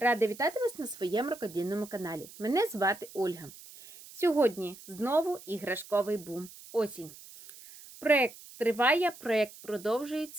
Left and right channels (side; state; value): right; noise; hiss, 18 dB below the sound